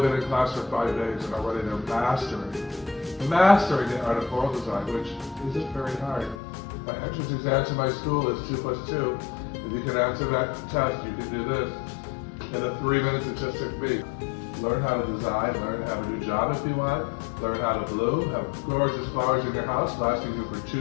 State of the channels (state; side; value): drops out; right; at 6.4 s